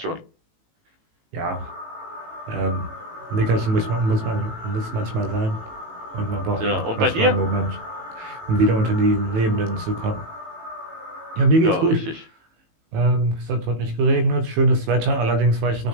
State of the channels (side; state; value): left; late; 18 ms